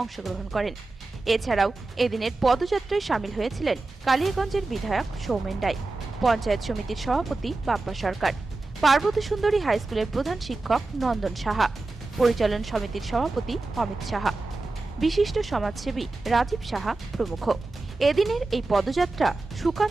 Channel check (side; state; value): left; quieter; 3.3 dB